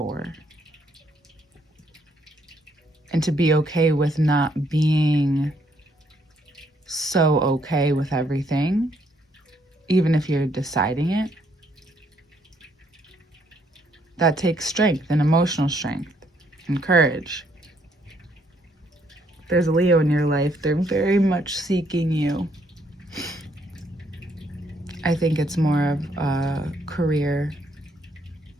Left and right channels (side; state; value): both; normal; correlation 0.70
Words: and to be okay with not being so okay with everything, even if you're deciding it. That takes strength and emotional strength and courage. If there's a Leo in your life, they're very much seeking you. I think it's more of a career